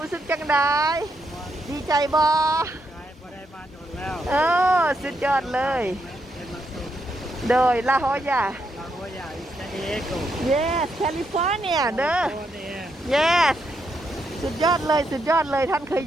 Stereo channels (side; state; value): both; normal; correlation 0.80